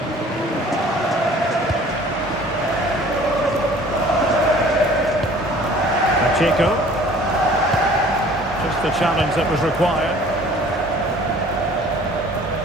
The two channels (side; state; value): both; normal; correlation 0.50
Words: Pacheco. Just the challenge that was required.